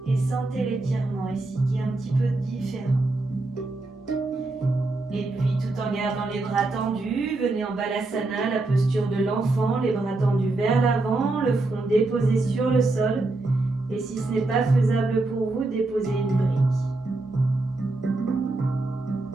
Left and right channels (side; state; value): left; quieter; 3.1 dB